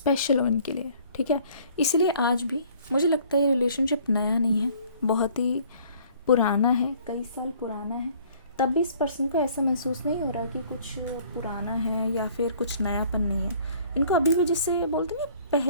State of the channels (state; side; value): inverted; both; correlation -0.56